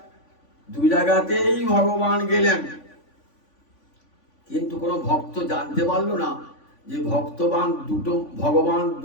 দু জায়গাতেই ভগবান গেলেন। কিন্তু কোন ভক্ত জানতে পারলো না যে ভগবান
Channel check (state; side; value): late; right; 3.5 ms